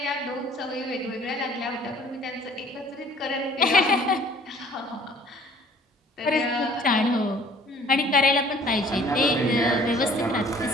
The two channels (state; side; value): normal; both; correlation 0.54